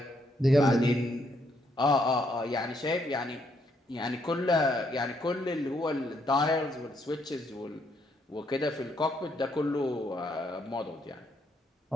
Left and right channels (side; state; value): both; normal; correlation 0.73